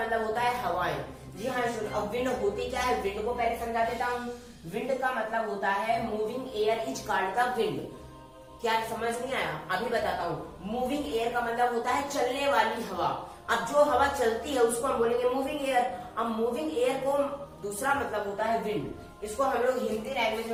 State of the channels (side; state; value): both; identical; correlation 1.00